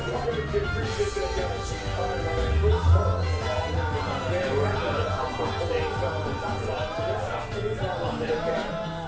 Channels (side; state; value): both; identical; correlation 1.00